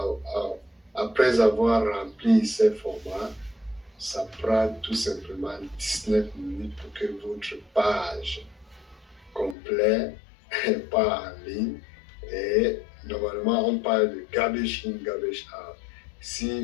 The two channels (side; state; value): right; drops out; at 9.6 s